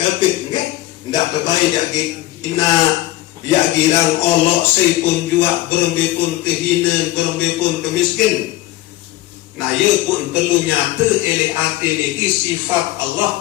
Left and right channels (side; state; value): right; quieter; 16.6 dB